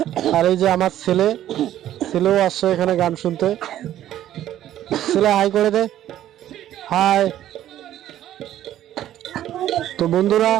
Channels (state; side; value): quieter; left; 12.3 dB